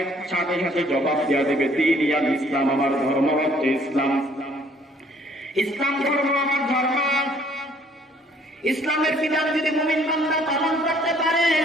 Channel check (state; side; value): normal; both; correlation 0.61